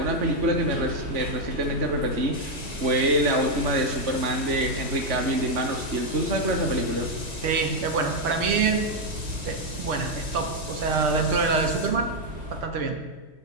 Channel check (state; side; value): late; left; 3.2 ms